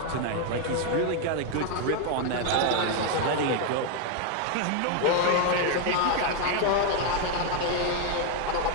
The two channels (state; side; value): different; both; correlation 0.01